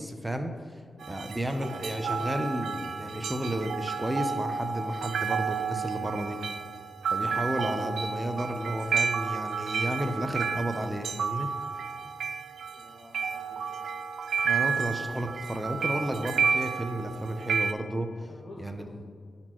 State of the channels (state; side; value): quieter; left; 3.3 dB